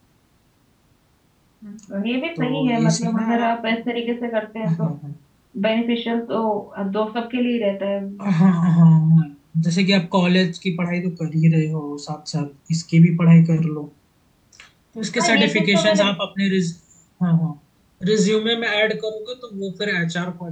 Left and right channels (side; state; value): both; identical; correlation 1.00